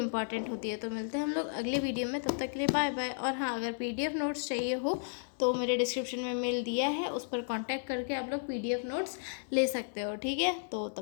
होती है। तो मिलते हैं हम लोग अगले वीडियो में, तब तक के लिए बाय बाय। और हाँ, अगर PDF नोट्स चाहिए हो तो मेरे डिस्क्रिप्शन में मेल दिया है, उस पर कांटेक्ट करके आप लोग PDF नोट्स ले सकते हो, ठीक है। तो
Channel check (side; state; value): right; silent; 56 dB below the other